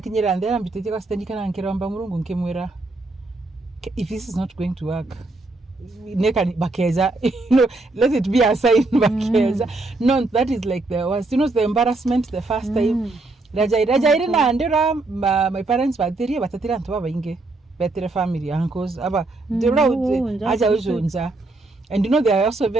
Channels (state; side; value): quieter; left; 3.1 dB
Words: ndera mbitete kwa sister ndikana nkiromba murungu nkemwera if this is not going to work neka bakeza let it be a sign bakeza no that is like the was the embarrassment the first time Raja na ndera my parents batatira ntu babainge better family uncles aba aja ujunja and they are also